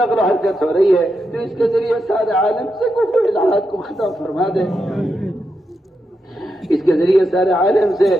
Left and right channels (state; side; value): normal; both; correlation 0.85